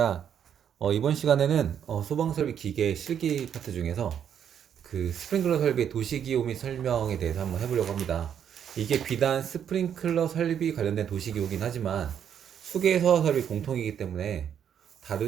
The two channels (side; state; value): left; quieter; 8.7 dB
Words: 이번 시간에는 소방 설비 기계 실기 파트 중에서 그 스프링클러 설비의 도시기후 및 설명에 대해서 한번 해보려고 합니다. 이게 비단 스프링클러 설비 관련된 도시기후긴 하지만 수계 소화 설비 공통이기 때문에